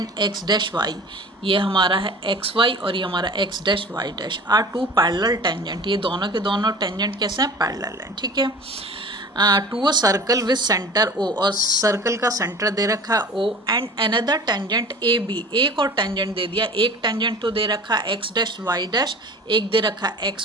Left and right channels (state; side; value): normal; both; correlation 0.40